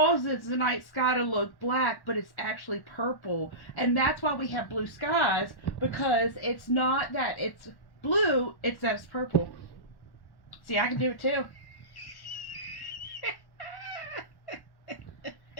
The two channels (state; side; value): late; right; 1.1 ms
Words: the night sky to look black, but it's actually purple. And that's why we have blue skies, because it's not that it's blue, it's that it's purple. See, I can do it too.